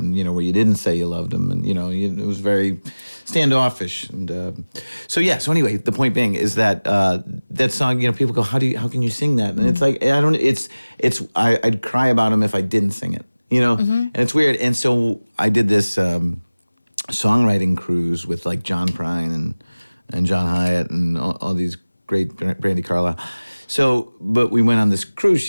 where you didn't say you loved him, and it was very standoffish, and so anyway, the point being is that that song, people go, how can you sing that? And it's like, I'd cry about him if I didn't sing it, and it's weird. And so I did this songwriting cruise with like John Prine and John Hyatt and all these great, Brandy Carlisle. So, but we went on this cruise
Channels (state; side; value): inverted; both; correlation -0.99